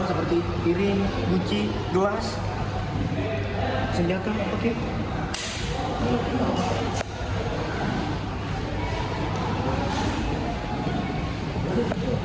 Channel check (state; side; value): identical; both; correlation 1.00